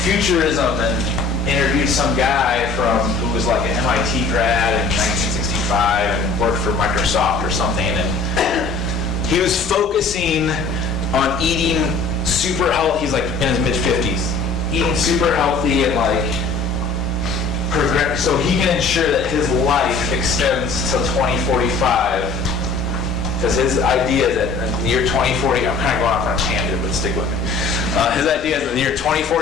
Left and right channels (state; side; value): quieter; right; 3.9 dB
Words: futurism and interviewed some guy who was like an MIT grad in 1965 and worked for Microsoft or something. And he was focusing on eating super healthy. He's in his mid-50s. Eating super healthy and so he can ensure that his life extends till 2045. Because his idea is that in the year 2040, I'm kind of going off on a tangent, but stick with me. His idea is that in the year